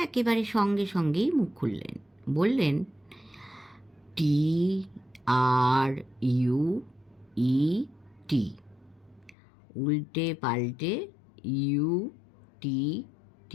একেবারে সঙ্গে সঙ্গেই মুখ খুললেন, বললেন, TRUET, উল্টে পাল্টে UTTER,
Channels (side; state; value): right; drops out; at 9.3 s